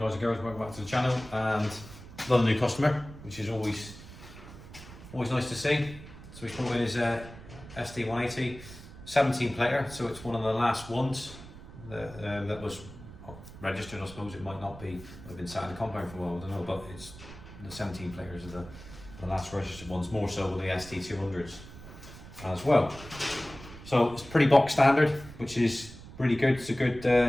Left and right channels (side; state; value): right; noise; rumble, 16 dB below the sound